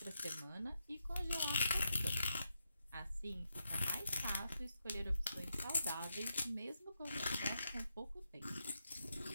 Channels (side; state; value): both; inverted; correlation -0.83